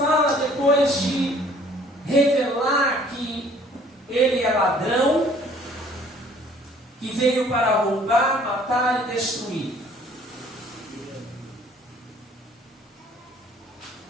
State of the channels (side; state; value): both; normal; correlation 0.56